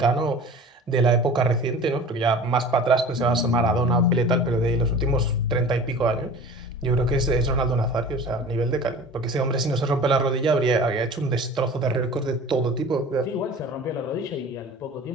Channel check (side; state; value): both; normal; correlation 0.39